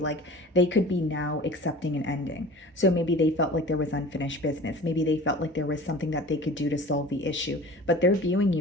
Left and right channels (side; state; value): both; normal; correlation 0.40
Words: they could be now accepting an ending. So maybe they felt like there was unfinished business. Maybe they felt like there was something that they could do to solve the issue, but they're viewing